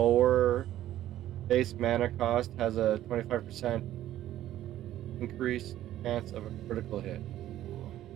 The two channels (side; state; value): left; quieter; 13.1 dB